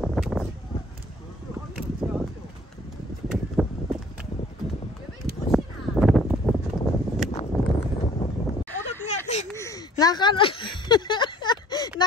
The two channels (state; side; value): normal; both; correlation 0.54